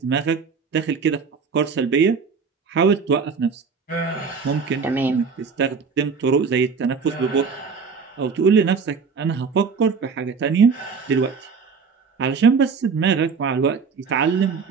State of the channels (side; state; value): left; quieter; 5.4 dB